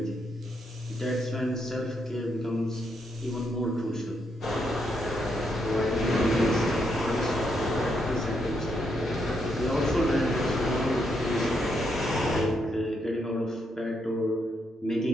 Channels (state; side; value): normal; both; correlation 0.78